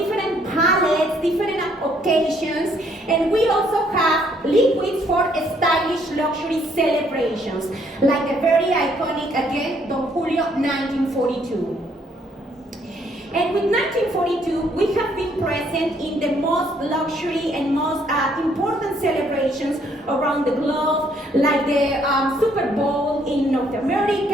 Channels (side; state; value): both; normal; correlation 0.67